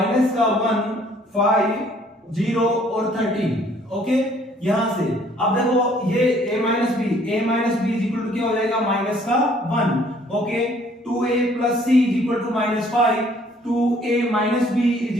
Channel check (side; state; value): both; normal; correlation 0.60